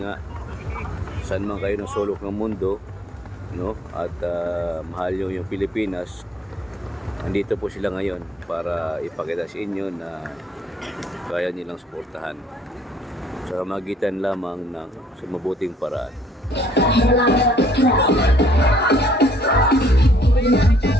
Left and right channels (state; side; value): normal; both; correlation 0.63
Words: nga, saan man kayo ng sulok ng mundo, no, at mahal nyo yung Pilipinas, nandito po sila ngayon para ipakita sa inyo na kaya nilang suportahan sa magitan lamang ng mabuting paraan.